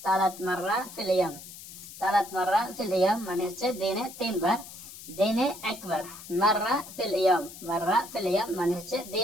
তালাত মাররা ফিল ইয়াম। তালাত মাররা ফিল ইয়াম মানে হচ্ছে দিনে তিনবার। দিনে একবার, মাররা ফিল ইয়াম। মাররা ফিল ইয়াম মানে হচ্ছে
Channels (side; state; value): left; noise; hiss, 15 dB below the sound